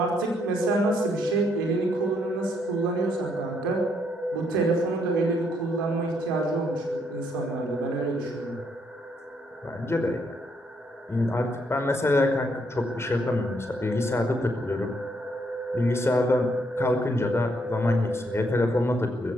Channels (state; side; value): normal; both; correlation 0.73